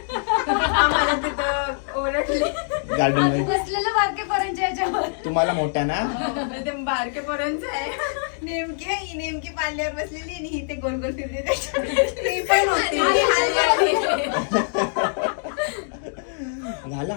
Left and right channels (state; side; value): silent; right; digital silence